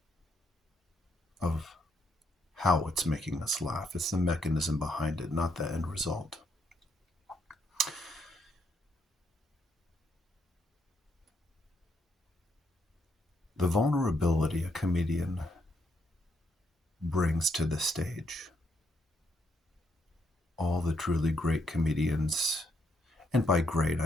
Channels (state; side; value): normal; both; correlation 0.76